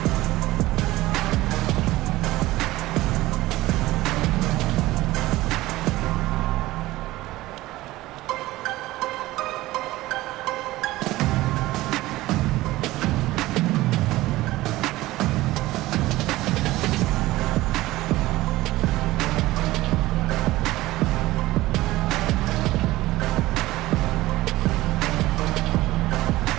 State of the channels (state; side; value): quieter; left; 17.8 dB